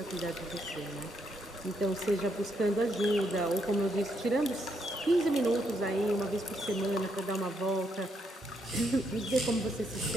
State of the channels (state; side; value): normal; both; correlation 0.76